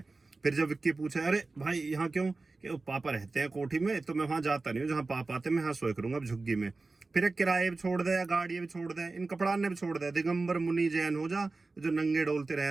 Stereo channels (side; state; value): left; quieter; 3.6 dB